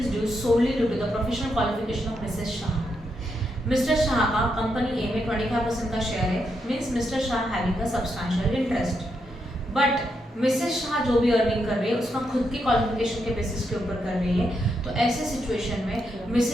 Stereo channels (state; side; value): normal; both; correlation 0.81